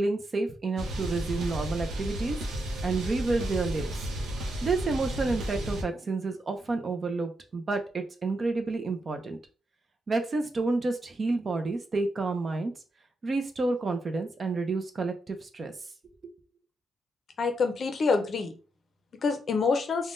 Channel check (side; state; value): both; normal; correlation 0.82